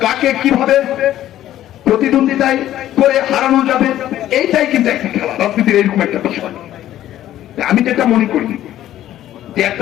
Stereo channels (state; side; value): quieter; right; 12.9 dB